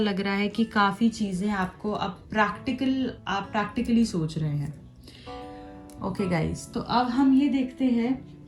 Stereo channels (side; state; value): both; identical; correlation 1.00